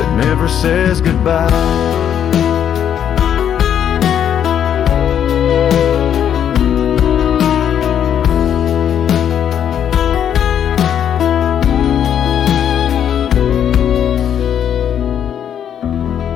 never says goodbye.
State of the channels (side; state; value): right; quieter; 9.2 dB